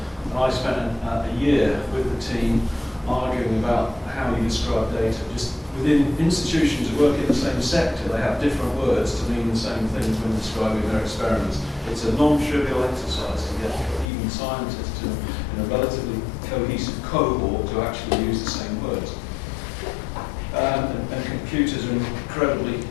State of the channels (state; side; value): drops out; right; at 14.1 s